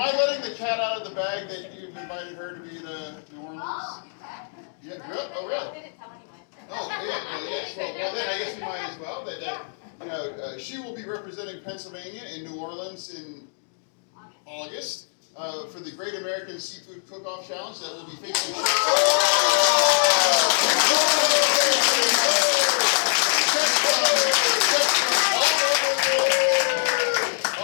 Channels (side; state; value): right; silent; digital silence